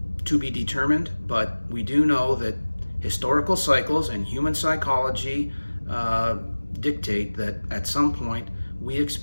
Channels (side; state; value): both; inverted; correlation -1.00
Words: to be determined, but we do know that historical cycles and human psychology dictate that at some point we